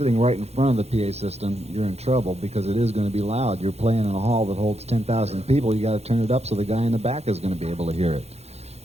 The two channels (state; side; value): late; left; 0.31 ms